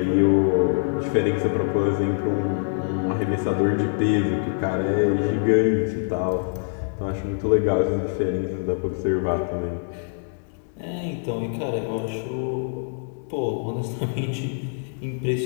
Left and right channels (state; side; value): silent; right; digital silence